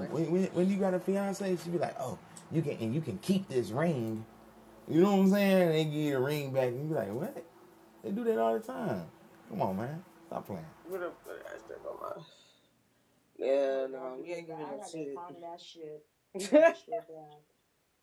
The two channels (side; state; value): both; identical; correlation 1.00